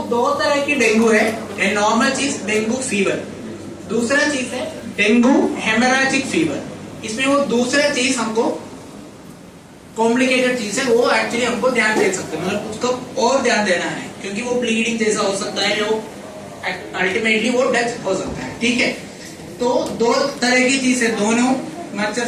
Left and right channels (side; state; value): both; identical; correlation 1.00